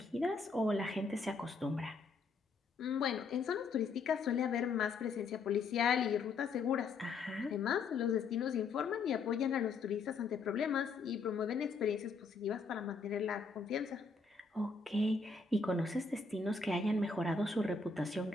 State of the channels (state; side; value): quieter; right; 4.4 dB